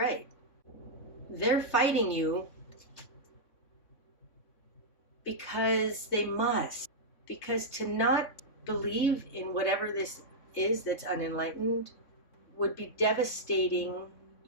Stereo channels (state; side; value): late; right; 3.6 ms